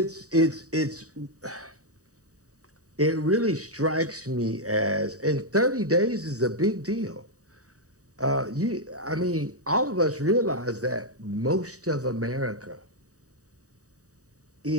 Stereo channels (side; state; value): left; late; 0.66 ms